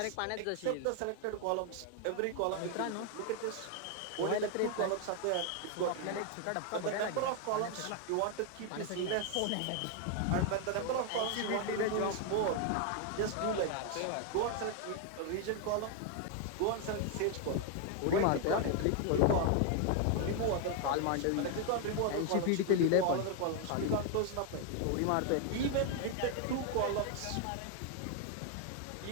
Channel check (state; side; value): different; both; correlation 0.01